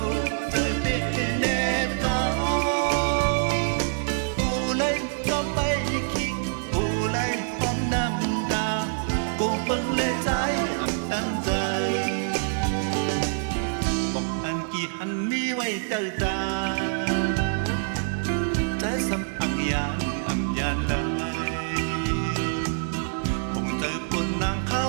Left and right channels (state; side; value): silent; left; 61 dB below the other